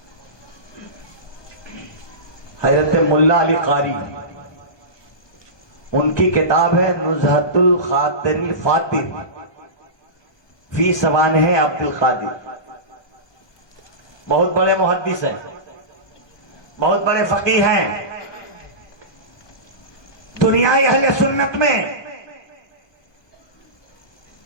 حضرت ملا علی قاری، ان کی کتاب ہے نزہت الخاطر الفاتر فی سوانح عبد القادر، بہت بڑے محدث ہیں، بہت بڑے فقیہ ہیں۔ دنیای اہل سنت میں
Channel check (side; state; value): right; late; 1.2 ms